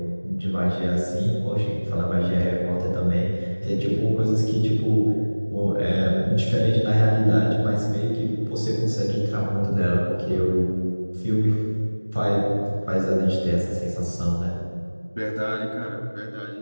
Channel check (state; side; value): inverted; both; correlation -1.00